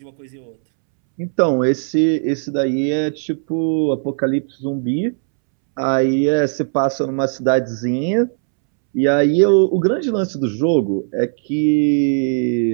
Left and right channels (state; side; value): silent; left; 67 dB below the other